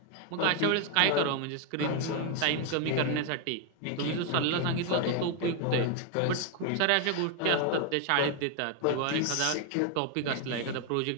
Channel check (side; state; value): both; different; correlation 0.01